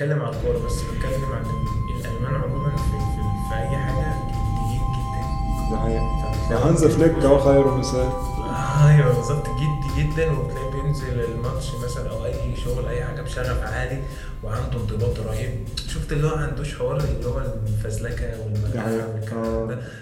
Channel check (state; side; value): identical; both; correlation 1.00